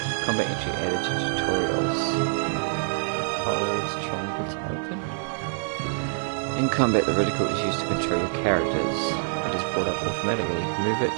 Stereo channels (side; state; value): left; silent; 61 dB below the other